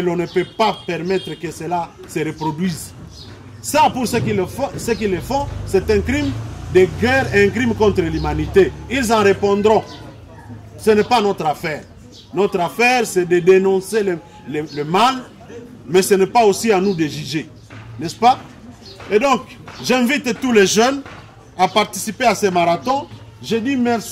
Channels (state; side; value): identical; both; correlation 1.00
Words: l'on ne peut pas permettre que cela se reproduise. Ça, pour ceux qui le font, c'est un crime de guerre, un crime contre l'humanité. Ils en répondront. Ce n'est pas notre affaire. Notre affaire, c'est de dénoncer le mal, mais ce n'est pas aussi à nous de juger. N'est-ce pas? Et donc, j'invite tous les jeunes à participer à ces marathons. Je dis